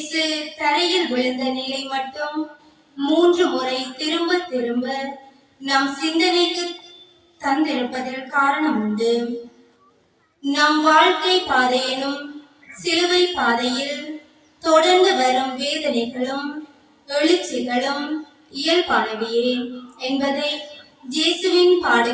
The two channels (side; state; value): both; identical; correlation 1.00